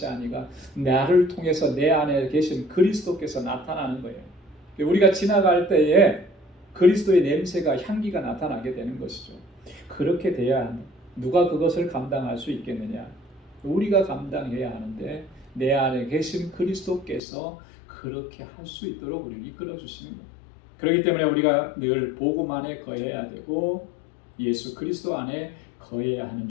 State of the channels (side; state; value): right; drops out; at 17.2 s